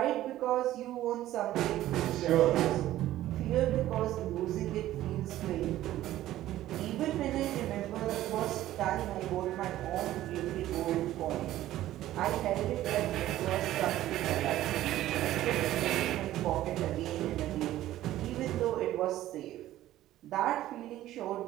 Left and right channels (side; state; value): left; quieter; 14.2 dB